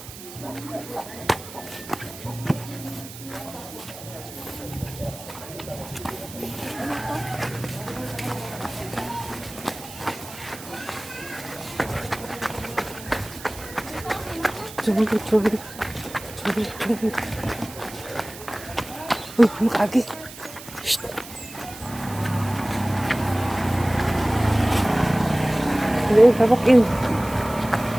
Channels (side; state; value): right; noise; hiss, 15 dB below the sound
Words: Chubig. Uy, makagi. Shhh. Hello, tabakin.